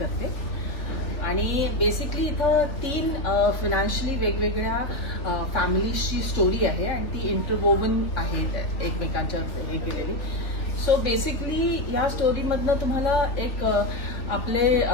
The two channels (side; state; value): right; late; 3.4 ms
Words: आणि बेसिकली इथं 3 फायनान्शियली वेगवेगळ्या फॅमिलीजची स्टोरी आहे आणि ती इंटरवोवन आहे एकमेकांच्या हे केलेली. सो बेसिकली ह्या स्टोरीमधनं तुम्हाला एक आपले